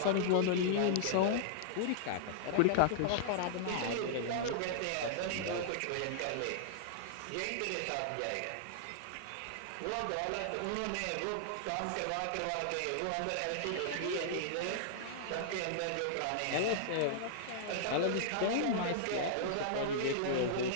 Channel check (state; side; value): different; both; correlation -0.01